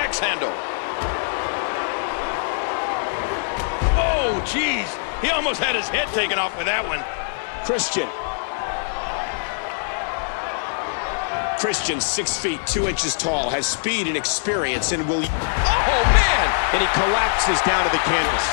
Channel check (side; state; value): right; silent; digital silence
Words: handle. Oh, geez. He almost had his head taken off with that one. Christian, 6 feet, 2 inches tall, has speed and experience and will... Oh, man! And he collapses down to the canvas.